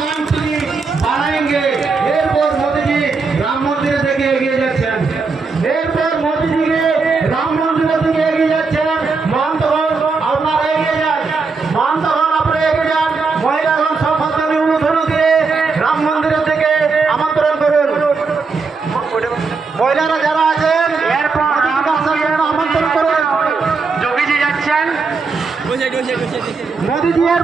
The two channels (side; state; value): left; quieter; 4.5 dB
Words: कंट्री बनाएंगे। एरपोर मोदी जी राम मंदिर থেকে এগিয়ে যাচ্ছেন। এরপর মোদি জিকে রাম মন্দির থেকে এগিয়ে যাচ্ছেন। মহন্তগণ আপনারা এগিয়ে যান, মহন্তগণ আপনারা এগিয়ে যান। মহিলাগণ সম্পত্তি উলুধনু দিয়ে রাম মন্দিরের থেকে আমন্ত্রণ করুন। মহিলারা যারা আছেন এরপর আমন্ত্রণ করুন। যোগীজি যাচ্ছেন, মোদিজি